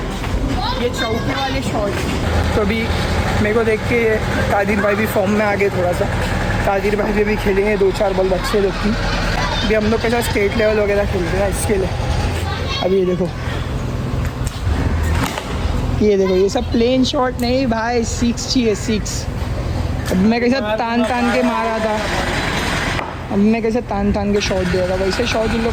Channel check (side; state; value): both; identical; correlation 1.00